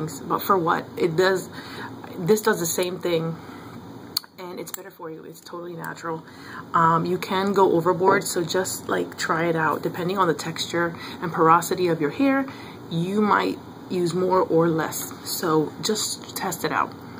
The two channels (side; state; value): both; identical; correlation 1.00